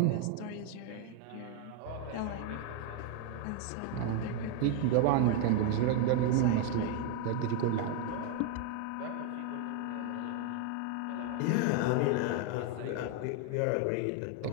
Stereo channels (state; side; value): different; both; correlation 0.01